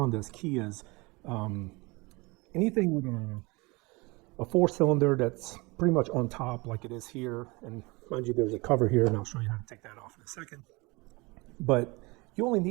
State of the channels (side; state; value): left; quieter; 25.2 dB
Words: Kias, anything with a 4-cylinder that's pretty much on top like it is here. And mind you, there's a cover here and I'll show you how to take that off in a second. But you only